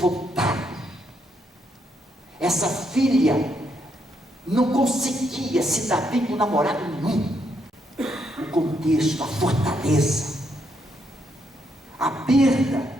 essa filha não conseguia se dar bem com namorado nenhum. O contexto, a fortaleza, a perda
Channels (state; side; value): normal; both; correlation 0.76